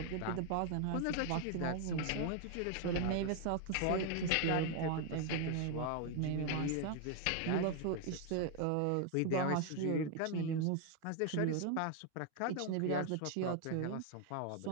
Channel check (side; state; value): both; different; correlation 0.01